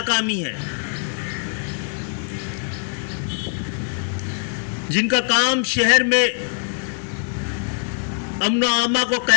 ہے، جن کا کام شہر میں امن و امان کو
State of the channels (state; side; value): silent; right; 55 dB below the other